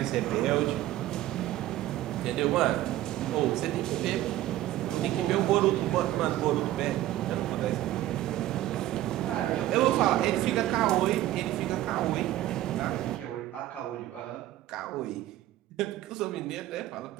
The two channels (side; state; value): left; quieter; 14.6 dB